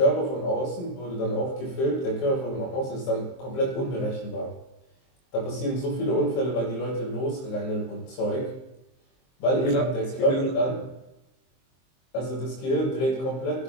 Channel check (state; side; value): late; right; 23 ms